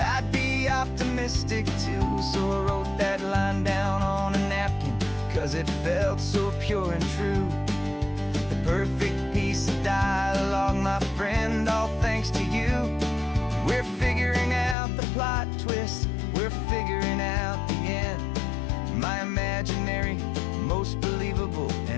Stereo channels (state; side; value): drops out; right; at 14.8 s